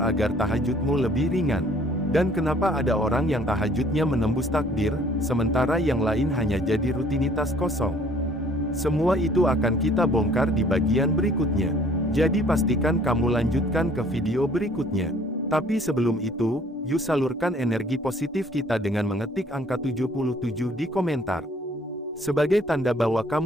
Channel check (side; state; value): both; normal; correlation 0.57